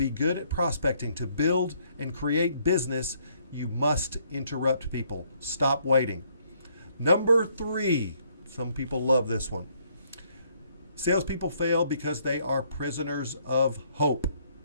good at prospecting, to build and create business, you must interrupt people. Stop waiting. Number three, some people love this one. Salespeople fail because they are prisoners of hope.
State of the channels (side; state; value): both; inverted; correlation -0.68